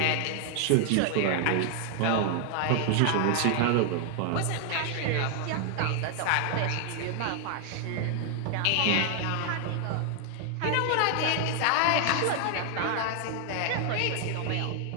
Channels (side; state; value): both; different; correlation 0.00